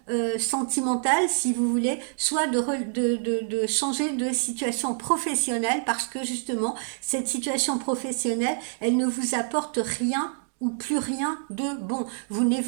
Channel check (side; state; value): left; silent; 61 dB below the other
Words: sentimentale, si vous voulez, soit de changer de situation professionnelle, parce que justement, cette situation professionnelle, elle ne vous apporte rien ou plus rien de bon. Vous